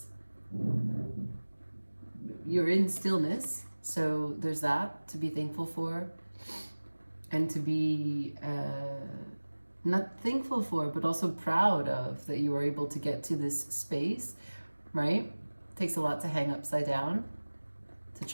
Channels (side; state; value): both; inverted; correlation -1.00